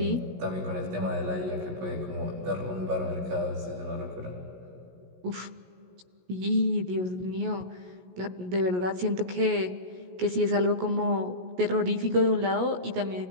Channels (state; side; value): late; left; 16 ms